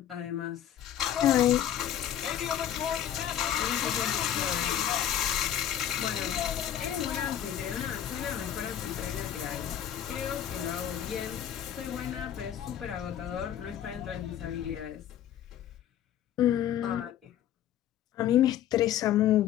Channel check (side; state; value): right; quieter; 10.7 dB